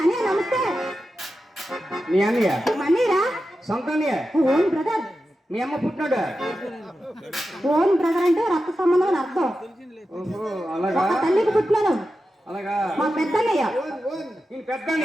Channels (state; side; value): normal; both; correlation 0.91